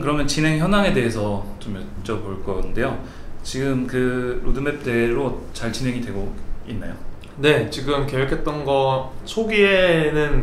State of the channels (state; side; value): identical; both; correlation 1.00